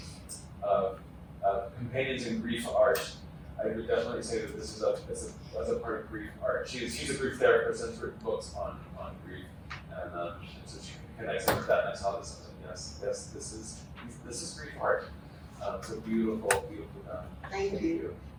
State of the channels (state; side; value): identical; both; correlation 1.00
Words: companions in grief art. I would definitely say that this is as a part of grief art. She's a grief therapist and has written books on grief, and so she connects with that. And I saw this. I was like, yes, this is grief art. It's a beautiful done. Thank you.